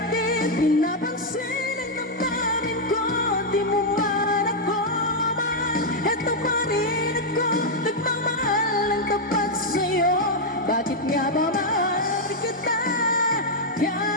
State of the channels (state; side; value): normal; both; correlation -0.02